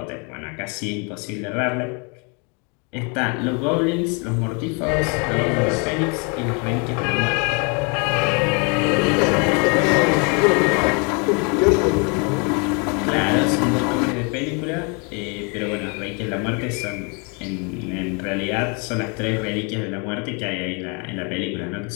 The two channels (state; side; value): quieter; right; 34.0 dB